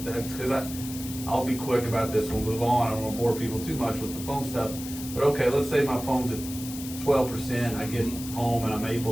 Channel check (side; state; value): left; noise; hiss, 11 dB below the sound